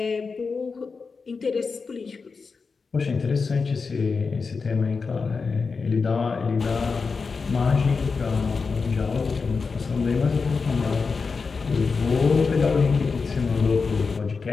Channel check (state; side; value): quieter; right; 4.8 dB